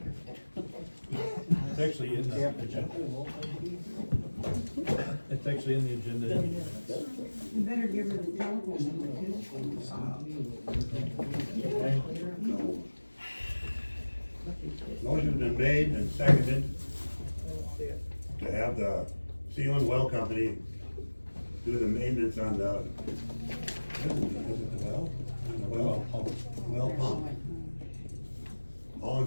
It's actually in the agenda. It's actually in the agenda. You better give her the telephone. Okay. motion's been made and seconded to have the Sealand Well Company do the maintenance on the, is it the well? On the well? Well pump. All in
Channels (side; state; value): both; inverted; correlation -1.00